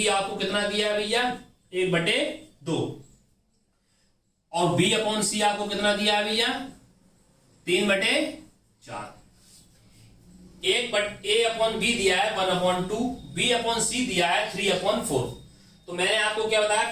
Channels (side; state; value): both; identical; correlation 1.00